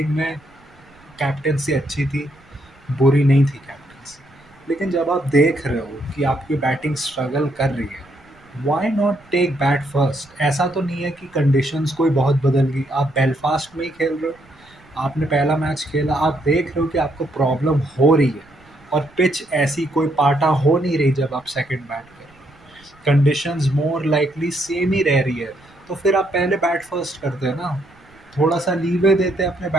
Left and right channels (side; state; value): right; noise; rumble, 29 dB below the sound